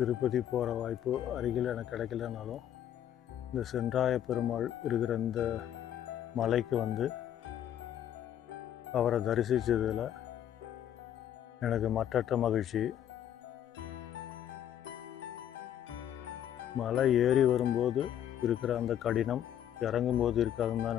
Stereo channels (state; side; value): quieter; right; 10.5 dB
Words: போகிற வாய்ப்பு அருகில் எனக்கு கிடைக்கலனாலும் இந்த சென்றாய பெருமாள் இருக்கிற இந்த மலைக்கு வந்து அவரை தரிசித்ததில் எனக்கு மற்றற்ற மகிழ்ச்சி. மலை ஏறி வரும்போது இருக்கிற அந்த கடினம் இறங்கும்போது இருக்காதுன்னு